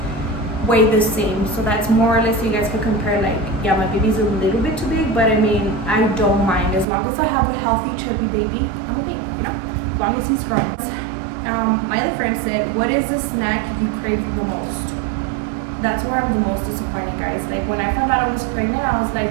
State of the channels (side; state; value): left; drops out; at 6.9 s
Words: weigh the same. So that's more or less, so you guys can compare, like, yeah, my baby's a little bit too big, but I mean, I don't mind. As long as I have a healthy, chubby baby, I'm okay, you know, as long as he's growing. My other friend said, what is the snack you crave the most? That's where I'm the most disappointed, guys. Like, when I found out I was pregnant, I was